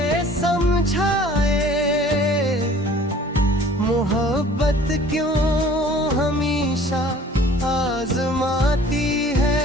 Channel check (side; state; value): both; normal; correlation 0.50